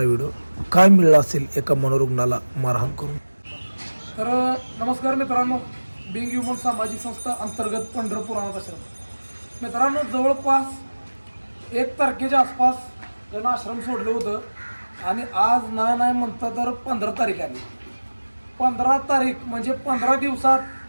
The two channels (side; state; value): both; inverted; correlation -1.00